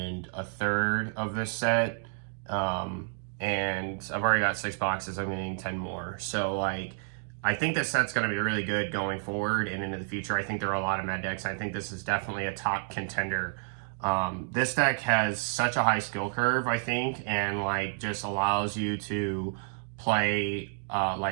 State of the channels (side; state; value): left; silent; 58 dB below the other